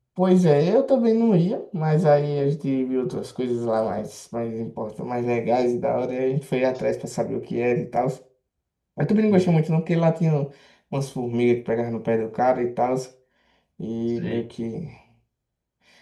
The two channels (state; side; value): identical; both; correlation 1.00